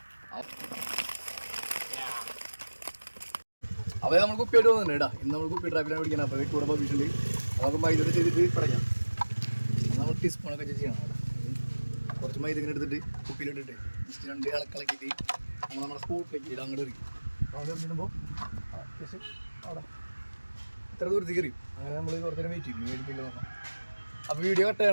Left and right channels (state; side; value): inverted; both; correlation -1.00